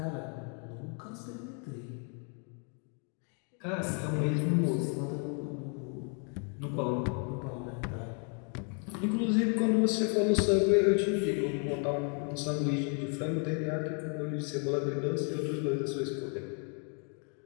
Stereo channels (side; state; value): right; quieter; 39.9 dB